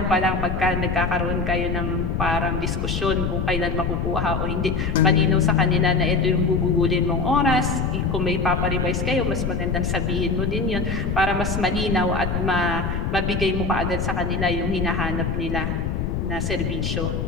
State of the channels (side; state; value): left; noise; rumble, 1 dB below the sound